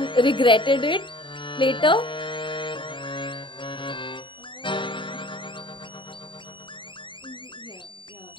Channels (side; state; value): right; late; 0.24 ms